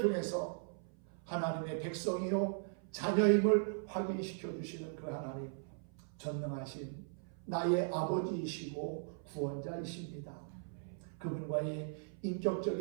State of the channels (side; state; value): left; silent; 52 dB below the other